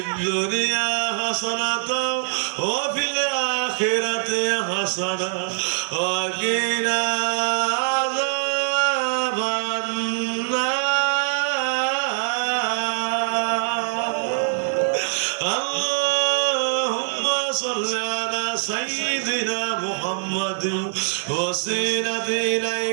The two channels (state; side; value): silent; left; digital silence